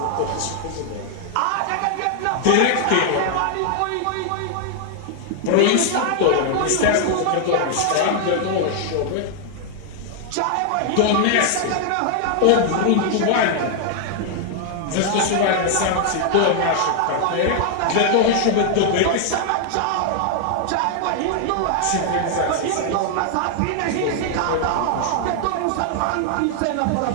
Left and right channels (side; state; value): both; different; correlation 0.00